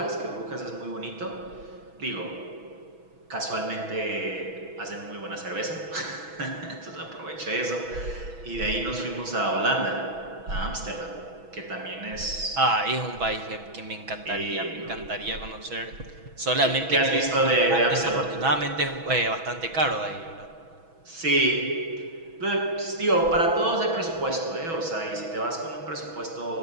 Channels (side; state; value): left; late; 6.1 ms